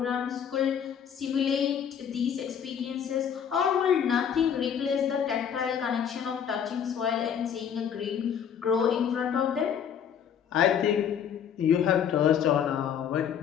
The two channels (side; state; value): right; quieter; 8.2 dB